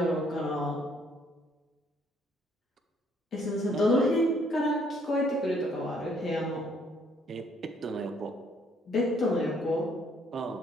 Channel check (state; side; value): normal; both; correlation 0.65